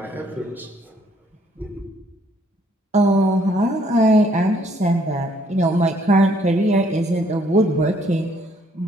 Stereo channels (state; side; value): normal; both; correlation 0.66